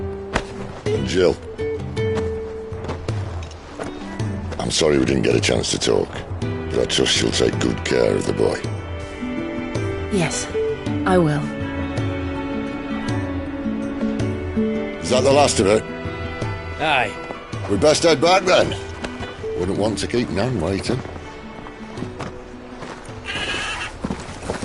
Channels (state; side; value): identical; both; correlation 1.00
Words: And Jill, I'm sorry we didn't get a chance to talk, but I trust she'll take good care of the boy. Yes, I will. Is that the last of it? Aye. We'd best head back then. Wouldn't want to keep Nan waiting.